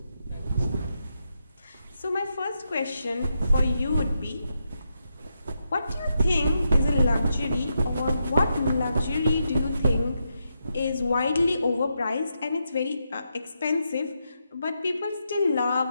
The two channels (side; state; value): both; inverted; correlation -0.83